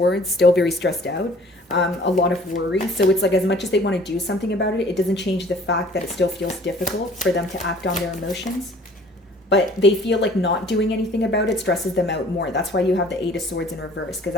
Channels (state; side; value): normal; both; correlation 0.52